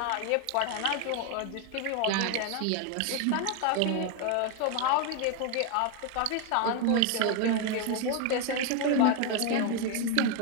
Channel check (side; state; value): both; different; correlation 0.01